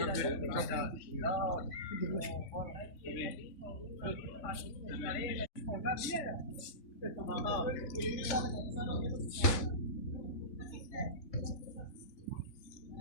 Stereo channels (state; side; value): late; right; 3.5 ms